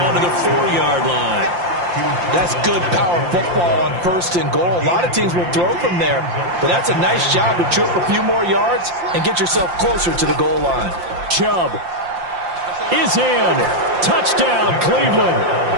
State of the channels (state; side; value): late; left; 5.7 ms